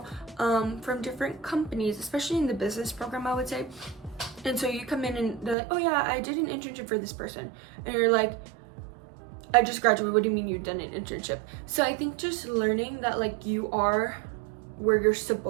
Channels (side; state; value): left; drops out; at 5.6 s